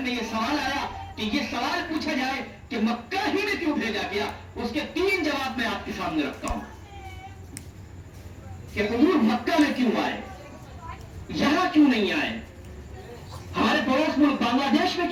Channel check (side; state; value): both; identical; correlation 1.00